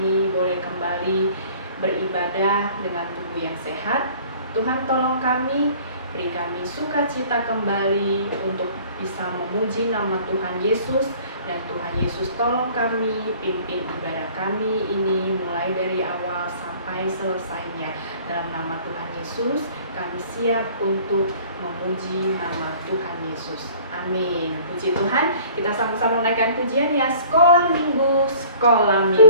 boleh kembali beribadah dengan tubuh yang sehat. Tuhan tolong kami, beri kami sukacita kembali untuk bisa memuji nama Tuhan Yesus. Dan Tuhan Yesus tolong kami, pimpin ibadah kami ini mulai dari awal sampai selesainya. Dalam nama Tuhan Yesus, kami siap untuk memuji nama Tuhan Yesus. Amin. Puji Tuhan, kita sama-sama menaikkan pujian ya. Sekolah minggu.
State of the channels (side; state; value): both; inverted; correlation -0.51